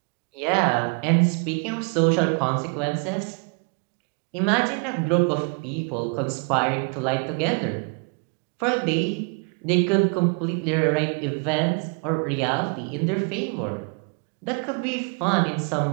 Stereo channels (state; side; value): quieter; left; 37.0 dB